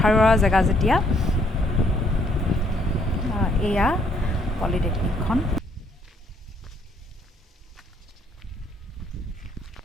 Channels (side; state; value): both; normal; correlation 0.67